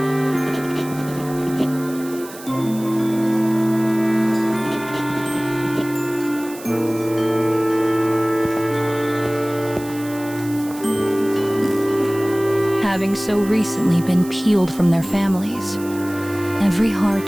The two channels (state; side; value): noise; right; hiss, 17 dB below the sound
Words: Having so recently been peeled from their families, every heart